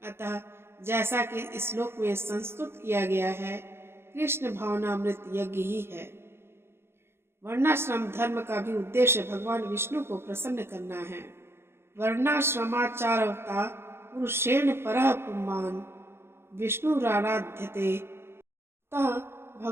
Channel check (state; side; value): late; left; 0.12 ms